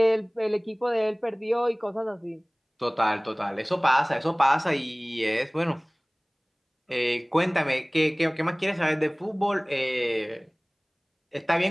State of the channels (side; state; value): both; identical; correlation 1.00